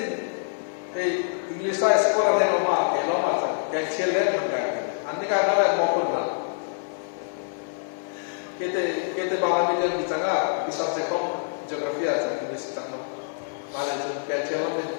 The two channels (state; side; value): silent; right; 61 dB below the other